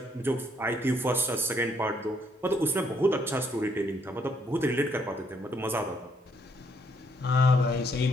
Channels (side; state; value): both; normal; correlation 0.70